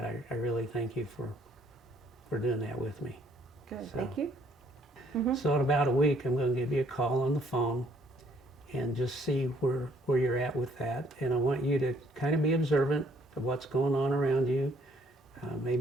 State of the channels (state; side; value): normal; both; correlation 0.65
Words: I really thank you for doing that with me. Good. So- Thank you. So in about a week, I'm going to give you a call on the phone and just see where you're at with that. And I want you to kind of be observant of what's going on around you.